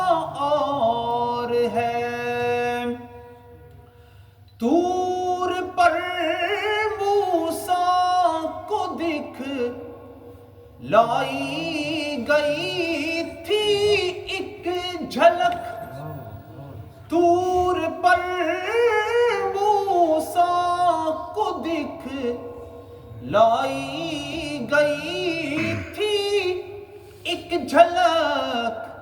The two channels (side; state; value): both; identical; correlation 1.00